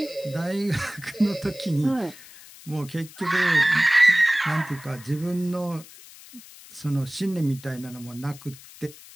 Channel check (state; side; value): noise; left; hiss, 19 dB below the sound